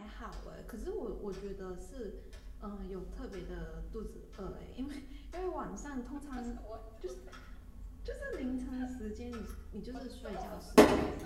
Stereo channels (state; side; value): identical; both; correlation 1.00